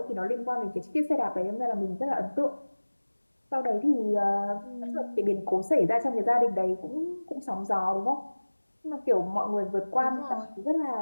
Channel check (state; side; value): inverted; both; correlation -1.00